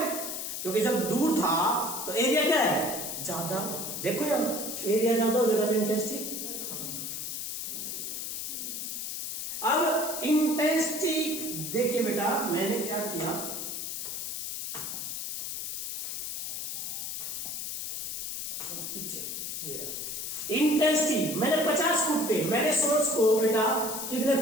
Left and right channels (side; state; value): left; noise; hiss, 4 dB below the sound